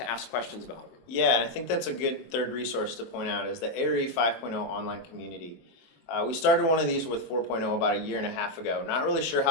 ask questions about them. Yeah, and I think that's a good third resource to point out is the ARI 5.0 online community. We started one of these with 4.0 about a year and a half ago. Not really sure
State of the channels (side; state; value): right; late; 24 ms